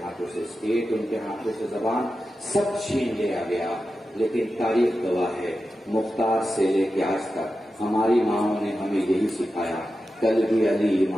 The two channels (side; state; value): both; normal; correlation 0.91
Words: ہاتھوں سے اسٹیٹ، ان کے ہاتھوں سے زبان، سب چھین لیا گیا. لیکن تاریخ گواہ ہے، مختار سے لے کے آج تک ہماری ماؤں نے ہمیں یہی سکھایا. کل بھی علی